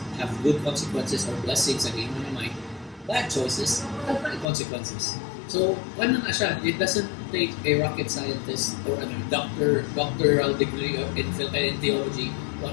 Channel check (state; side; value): drops out; right; at 4.5 s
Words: have good consequences or blessings again mo na Mike. Bad choices have bad consequences. So, ano na siya? It doesn't take a rocket scientist or a doctoral degree in theology to